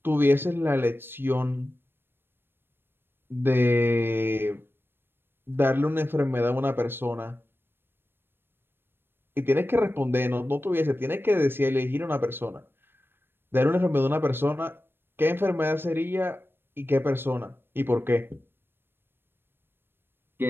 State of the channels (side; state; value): left; late; 0.10 ms